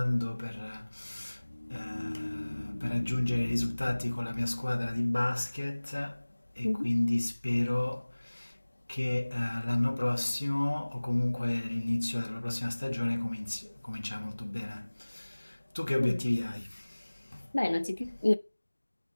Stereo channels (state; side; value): inverted; both; correlation -1.00